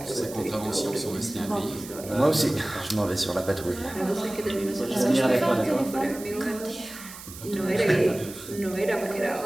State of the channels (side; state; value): right; noise; hiss, 14 dB below the sound